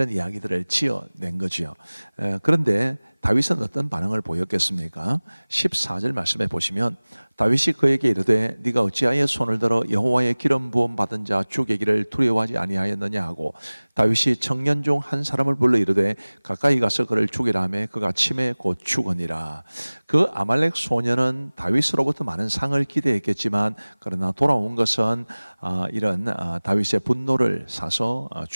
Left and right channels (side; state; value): both; inverted; correlation -1.00